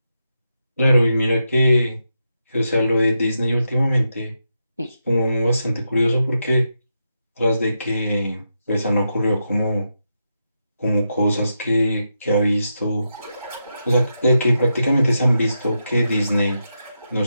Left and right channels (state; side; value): inverted; both; correlation -0.85